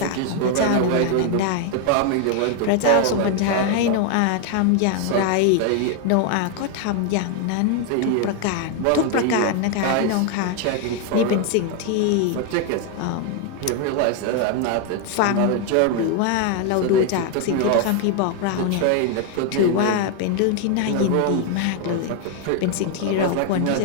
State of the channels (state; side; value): different; both; correlation 0.00